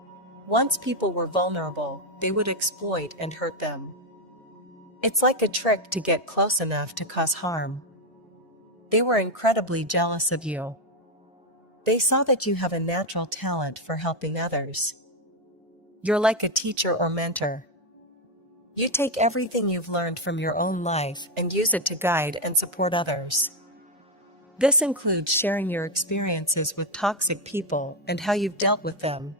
Once people were vulnerable, they would exploit and hurt them. It's like a trick to get close enough to cause harm. They were incredibly jealous of you. They saw that you have a natural talent for helping others. You're like a teacher or mentor. You take everything you've learned from your own life and use it to guide and support others. This includes sharing your experiences with toxic people and how you've dealt with them.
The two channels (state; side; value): normal; both; correlation 0.06